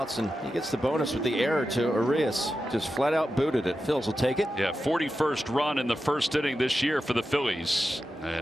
and he gets the bonus with the error to Urias. Just flat out booted it. Phils will take it. Yeah, 41st run in the first inning this year for the Phillies.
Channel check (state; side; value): normal; both; correlation 0.91